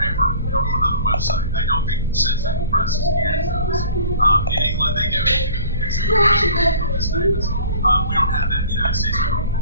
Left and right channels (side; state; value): both; inverted; correlation -0.46